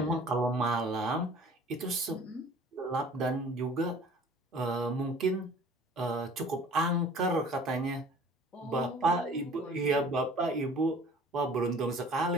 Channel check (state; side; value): normal; both; correlation 0.49